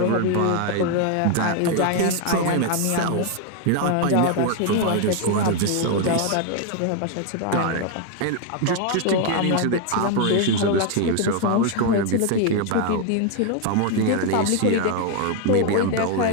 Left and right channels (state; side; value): different; both; correlation 0.01